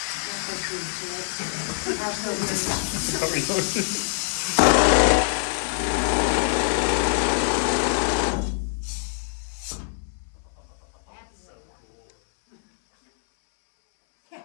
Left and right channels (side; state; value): right; silent; 62 dB below the other